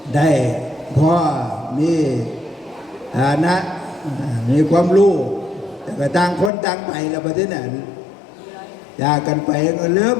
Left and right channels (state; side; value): drops out; right; at 6.5 s